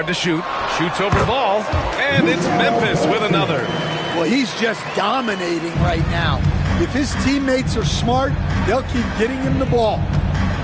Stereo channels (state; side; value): identical; both; correlation 1.00